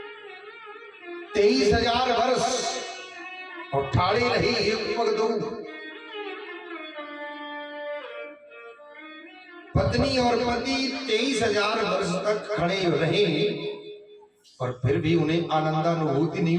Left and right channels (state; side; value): identical; both; correlation 1.00